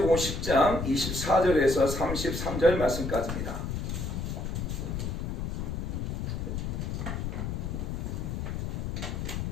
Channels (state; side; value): noise; left; rumble, 3 dB below the sound